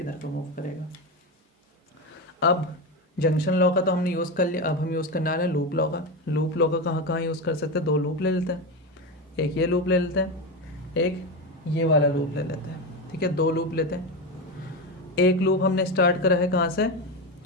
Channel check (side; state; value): both; normal; correlation 0.16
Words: को मूव करेगा। अब जंक्शन लॉ का तो हमने यूज़ कर लिया, अब हम यूज़ करने वाले हैं लूप लॉ का। लूप लॉ का कहाँ कहाँ यूज़ कर सकते हैं, दो लूप ले लेते हैं, एक ये लूप ले लेते हैं, एक ये वाला लूप ले लेते हैं। ठीक है, दो लूप लेते हैं। एक लूप हमने स्टार्ट करा है कहाँ से,